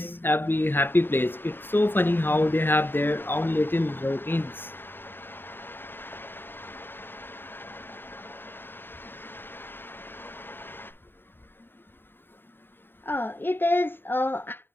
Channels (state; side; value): late; right; 0.099 ms